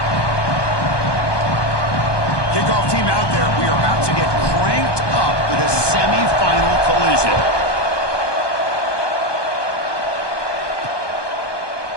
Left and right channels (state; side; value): late; right; 1.2 ms